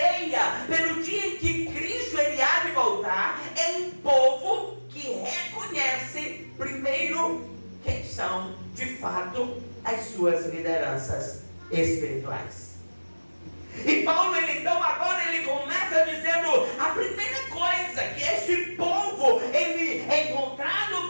pelo dia em que Cristo ele há de voltar. É um povo que reconhece primeiro quem são de fato as suas lideranças espirituais. E Paulo, então agora ele começa dizendo a primeira coisa, que este povo, ele é encontrado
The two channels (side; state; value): both; inverted; correlation -1.00